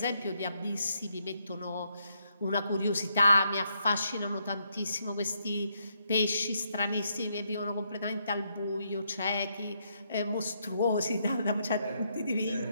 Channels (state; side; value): inverted; both; correlation -0.76